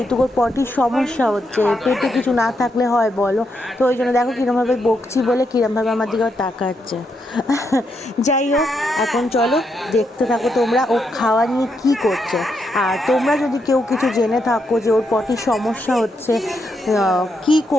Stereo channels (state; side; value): normal; both; correlation 0.81